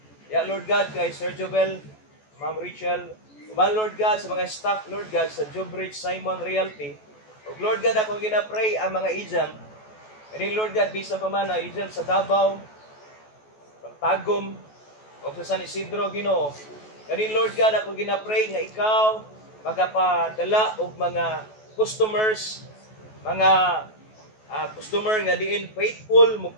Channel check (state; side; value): late; right; 14 ms